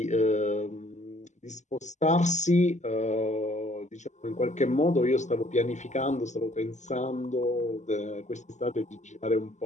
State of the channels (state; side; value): late; right; 0.34 ms